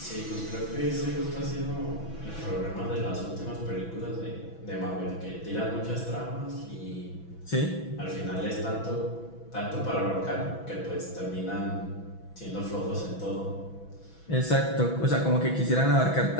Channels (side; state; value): right; late; 6.1 ms